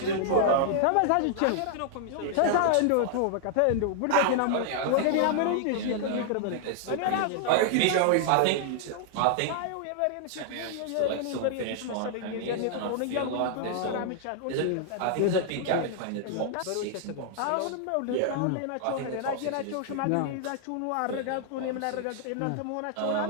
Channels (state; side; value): different; both; correlation -0.01